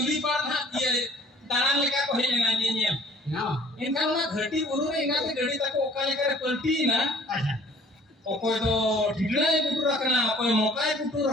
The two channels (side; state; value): both; normal; correlation 0.53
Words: part dia daran leka ko hele nanya. Inkan na घटी बुरु रे इंगा ते घड़ी तक ओकाले करे पलटी ना ओकोय तो ढिगला पुटू रखना ओकोय मोकाय पुटू